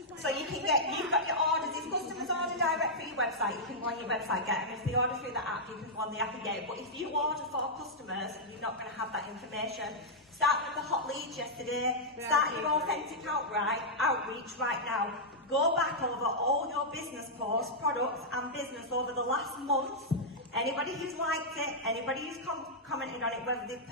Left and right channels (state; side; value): normal; both; correlation -0.07